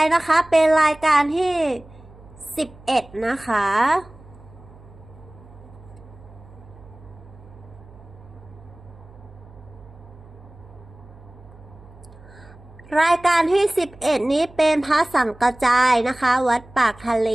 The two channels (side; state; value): right; noise; hum, 22 dB below the sound